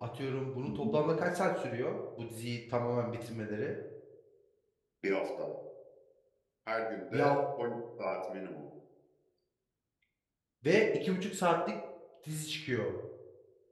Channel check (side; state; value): both; identical; correlation 1.00